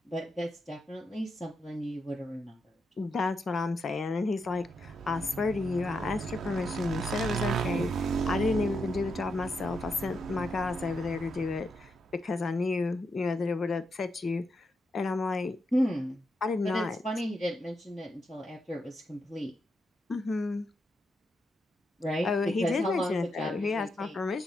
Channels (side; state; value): both; normal; correlation 0.83